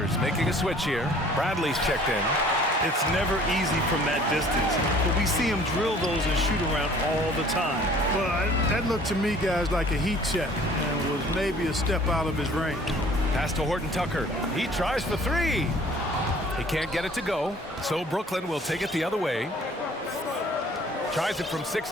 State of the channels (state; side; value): normal; both; correlation 0.52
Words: making a switch here. Bradley's checked in. It's never easy from that distance, but we see him drill those and shoot around all the time. Well, that looked to me, guys, like a heat check and was maybe a step out of his range. Pass to Horton Tucker. He tries for three. He can't get it to go, so Brooklyn will take it the other way. Tries it from